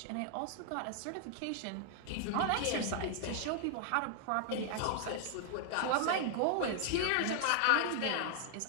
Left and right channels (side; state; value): both; different; correlation 0.00